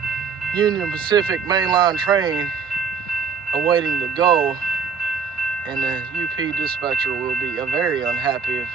Union Pacific mainline train awaiting to go, and the UP dispatcher will be very unhappy if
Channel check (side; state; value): left; quieter; 5.9 dB